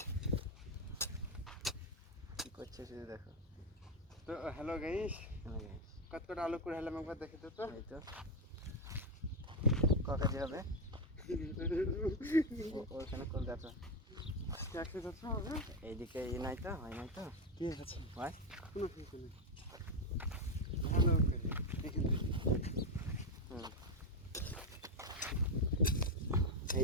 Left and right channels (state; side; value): normal; both; correlation 0.08